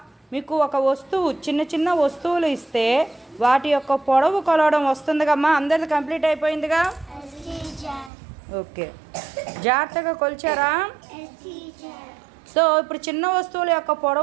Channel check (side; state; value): left; drops out; at 8.1 s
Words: మీకు ఒక వస్తువు చిన్న చిన్న వస్తువులు ఇస్తే వాటి యొక్క పొడవు కొలవడం వస్తుందిగమ్మా. అందరిది కంప్లీట్ అయిపోయిందిగా. ఓకే జాగ్రత్తగా కొలిచారా? సో ఇప్పుడు చిన్న వస్తువుల యొక్క